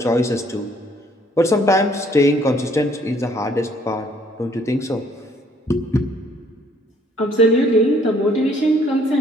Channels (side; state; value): both; normal; correlation 0.62